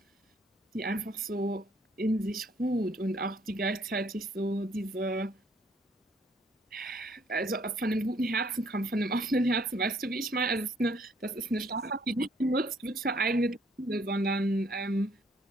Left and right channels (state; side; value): normal; both; correlation 0.64